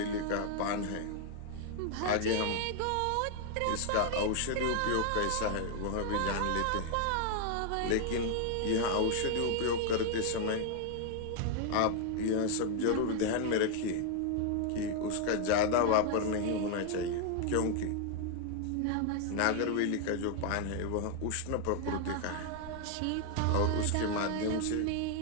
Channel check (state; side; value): different; both; correlation 0.00